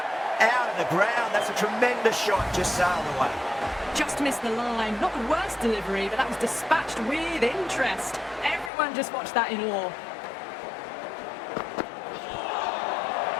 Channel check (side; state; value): right; drops out; at 8.7 s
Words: Out of the ground. That's a tremendous shot. Just sailed away. Just missed the line. Not the worst delivery, but that was dispatched with interest. Everyone just watched that in awe.